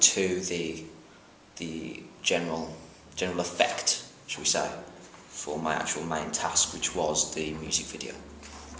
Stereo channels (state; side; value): identical; both; correlation 1.00